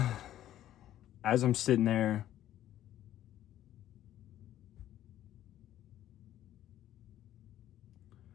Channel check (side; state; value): right; quieter; 12.5 dB